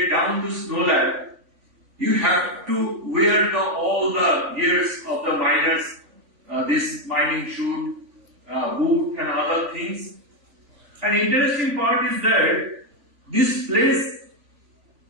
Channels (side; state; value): left; late; 3.5 ms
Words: down to Snow Lab, you have to wear all the gears of the miners, this mining chute, boot and other things. An interesting part is that this place,